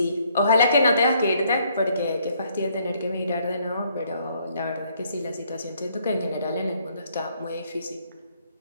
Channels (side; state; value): both; inverted; correlation -0.68